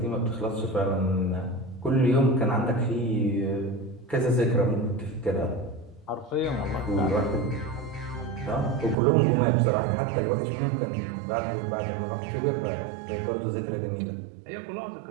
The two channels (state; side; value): drops out; left; at 9.0 s